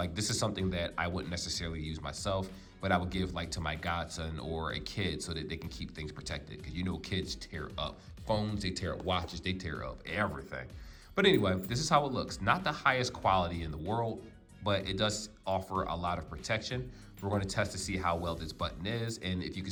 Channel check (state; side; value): identical; both; correlation 1.00